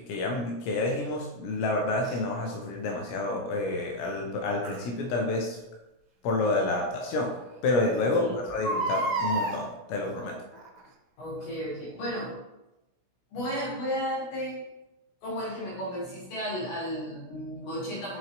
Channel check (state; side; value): late; right; 16 ms